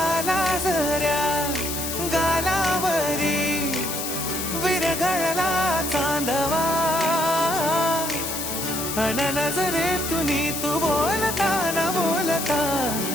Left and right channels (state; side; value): noise; left; hiss, 4 dB below the sound